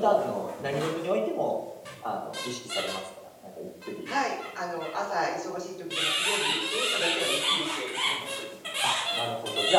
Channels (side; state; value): both; identical; correlation 1.00